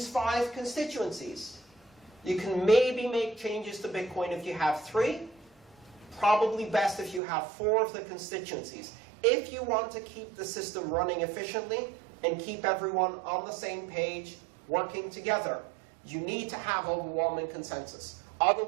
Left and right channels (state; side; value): drops out; left; at 7.2 s